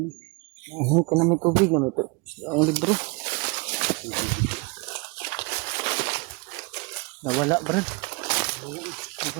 Ka na may tubig na may ang libro. Nawala, Brad.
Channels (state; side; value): quieter; left; 28.4 dB